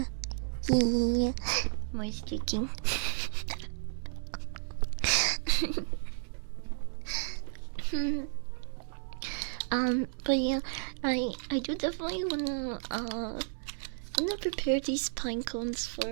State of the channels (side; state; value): left; silent; digital silence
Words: yeah. More streaking. But yeah, I do definitely wanna prepare these pine cones